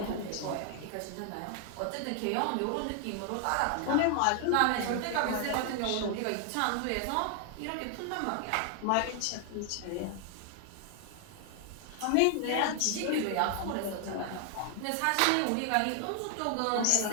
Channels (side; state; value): both; different; correlation 0.00